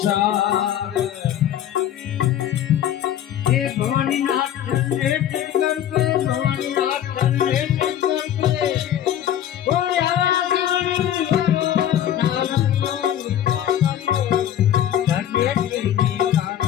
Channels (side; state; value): right; quieter; 10.9 dB